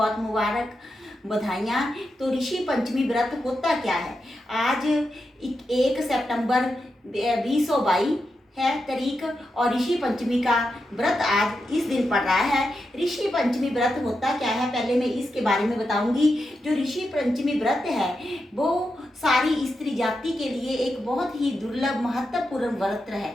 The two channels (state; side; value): normal; both; correlation 0.87